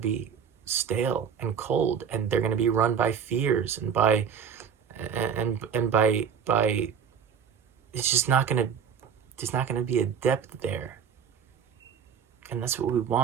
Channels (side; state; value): left; quieter; 7.4 dB